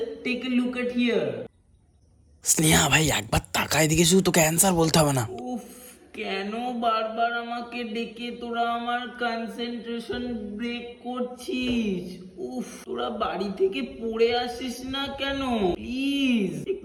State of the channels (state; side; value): identical; both; correlation 1.00